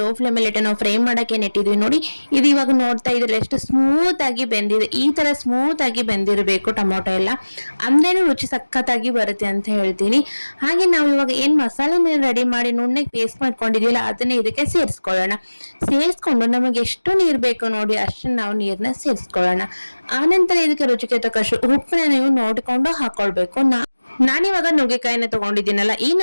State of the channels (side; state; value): both; inverted; correlation -1.00